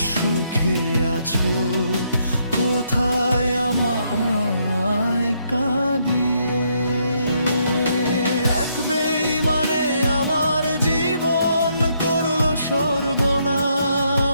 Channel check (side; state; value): both; inverted; correlation -0.74